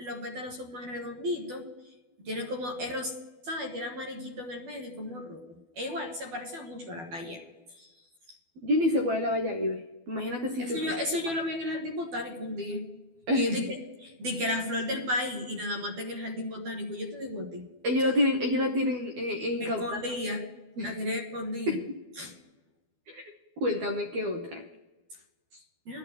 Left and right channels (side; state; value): left; late; 12 ms